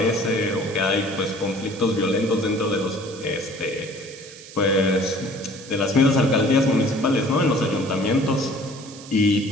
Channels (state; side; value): noise; right; hiss, 17 dB below the sound